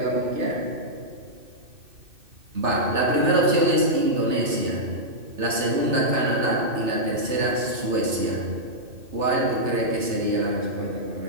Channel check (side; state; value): left; late; 2.6 ms